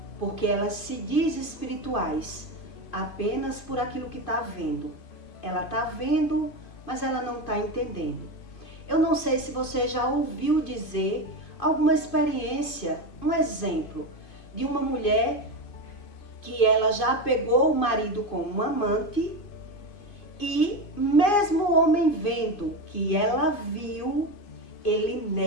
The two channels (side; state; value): right; late; 2.5 ms